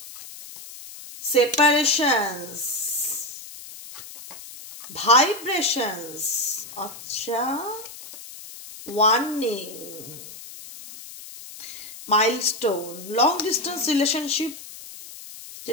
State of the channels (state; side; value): noise; left; hiss, 14 dB below the sound